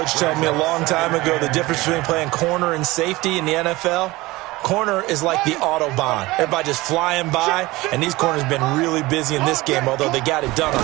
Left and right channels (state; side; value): quieter; left; 20.3 dB